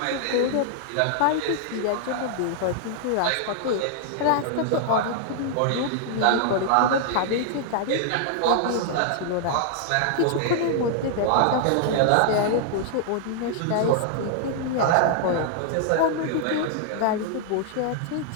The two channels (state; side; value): different; both; correlation -0.01